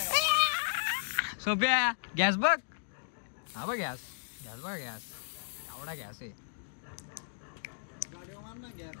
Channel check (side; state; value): right; silent; digital silence